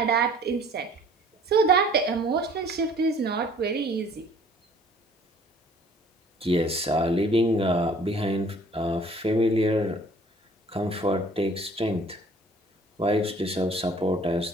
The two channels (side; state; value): both; normal; correlation 0.54